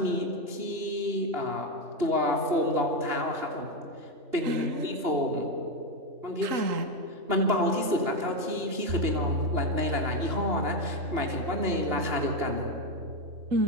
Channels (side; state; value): left; late; 2.9 ms